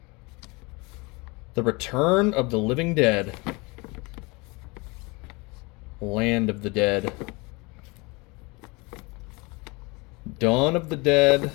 The Return of the Living Dead. Land of the Dead. Dawn of the Dead.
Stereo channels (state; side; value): quieter; right; 26.7 dB